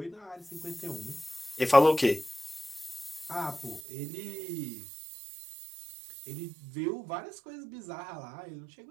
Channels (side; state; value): left; drops out; at 3.9 s